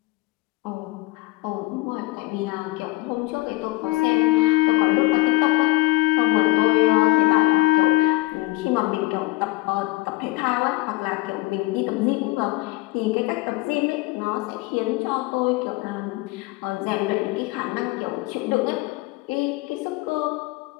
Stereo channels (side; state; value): right; quieter; 21.5 dB